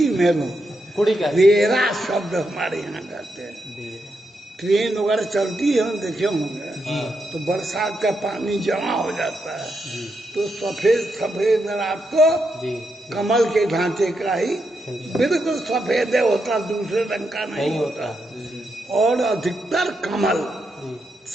में लो कुड़ी का वेरा शब्द हमारे यहाँ कहते हैं। ट्रेन वगैरह चलती है हम देखे होंगे तो बरसात का पानी जमा हो जाता है तो सफेद सफेद रात को जी कमल के ढांचे का ही बिल्कुल सफेद होता, दूसरे रंग का नहीं होता। और अधिकतर कमल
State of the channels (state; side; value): normal; both; correlation 0.83